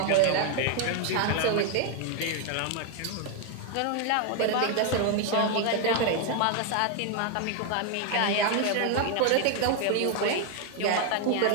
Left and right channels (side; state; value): both; different; correlation 0.01